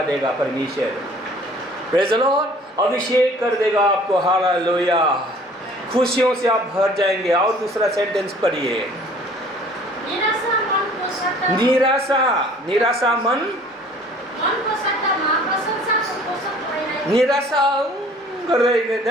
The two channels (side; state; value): both; normal; correlation 0.52